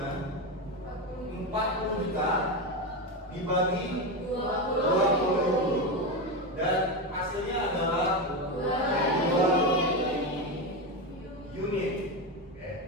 40 juta dibagi 20.000 dan hasilnya adalah 2 unit.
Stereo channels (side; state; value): both; normal; correlation 0.14